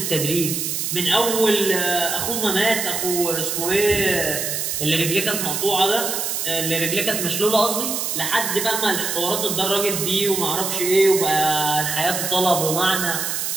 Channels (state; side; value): noise; right; hiss, 2 dB below the sound